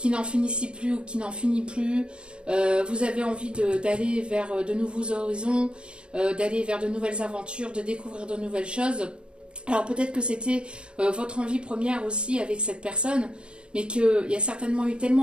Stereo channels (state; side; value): late; left; 0.055 ms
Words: n'en finissait plus ou qui n'en finit plus. Vous avez envie d'aller vers de nouveaux horizons, d'aller vers de nouvelles aventures, de découvrir de nouvelles choses. Alors peut-être que c'était votre envie première aussi avec cette personne, mais qu'il y a certainement eu